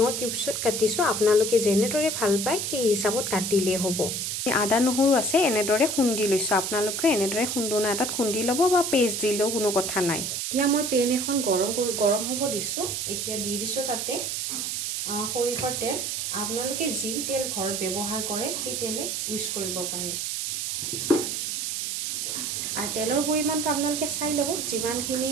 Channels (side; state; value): right; noise; hiss, 2 dB below the sound